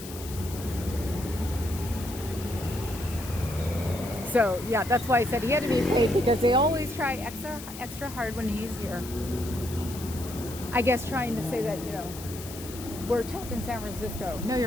So yeah, that's why I said he had to be paid, because they always try extra hard when he's here. I guess trying to say that, you know, we're tough in San Francisco. No,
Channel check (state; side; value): noise; left; hiss, 13 dB below the sound